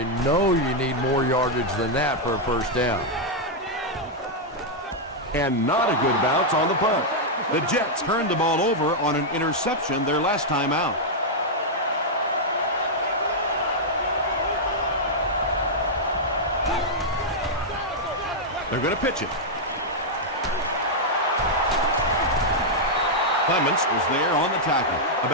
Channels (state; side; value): normal; both; correlation -0.04